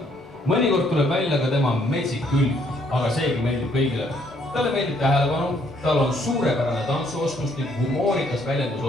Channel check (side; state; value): both; normal; correlation 0.67